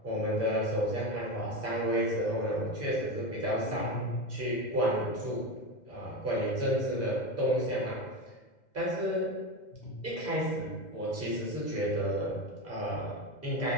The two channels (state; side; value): late; right; 2.1 ms